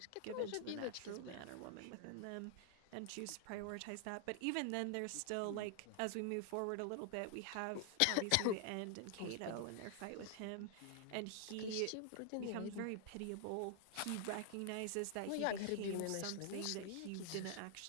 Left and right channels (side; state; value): both; different; correlation 0.00